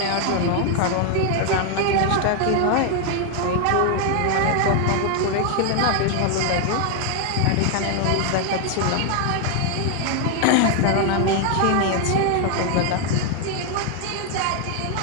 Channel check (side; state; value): both; different; correlation 0.00